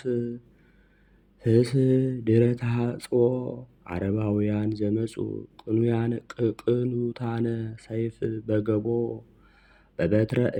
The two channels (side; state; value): both; identical; correlation 1.00